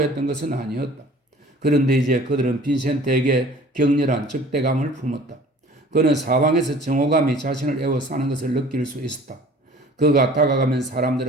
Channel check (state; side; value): normal; both; correlation 0.48